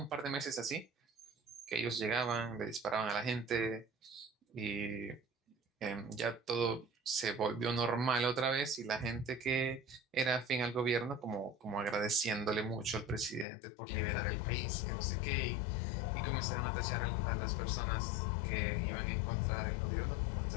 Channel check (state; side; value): drops out; right; at 13.5 s